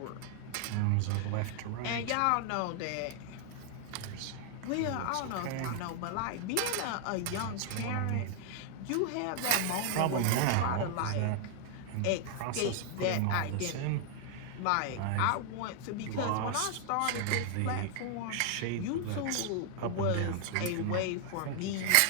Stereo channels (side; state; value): both; different; correlation 0.00